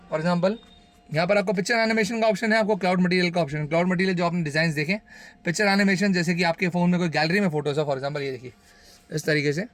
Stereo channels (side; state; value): both; identical; correlation 1.00